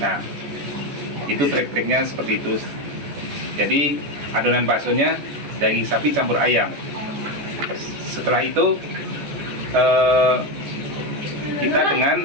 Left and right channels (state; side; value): late; left; 14 ms